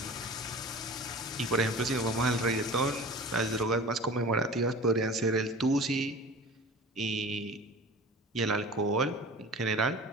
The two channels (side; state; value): both; normal; correlation 0.39